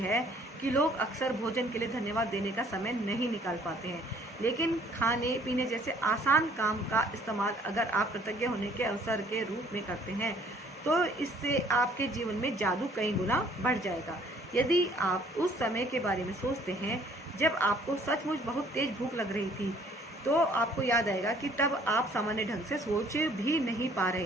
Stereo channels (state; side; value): normal; both; correlation 0.59